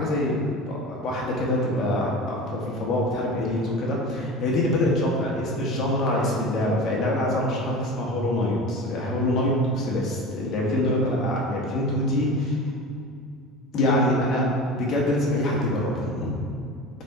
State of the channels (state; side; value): normal; both; correlation 0.33